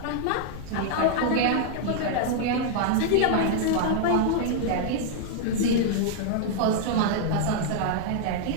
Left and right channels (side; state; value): both; different; correlation -0.01